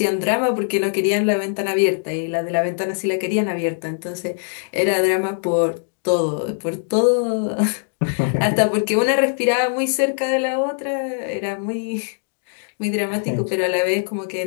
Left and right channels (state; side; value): silent; right; digital silence